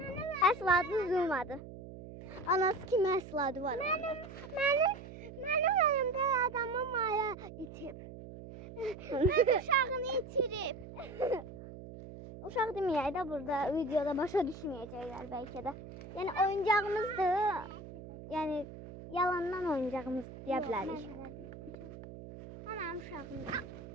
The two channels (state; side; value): noise; right; hum, 13 dB below the sound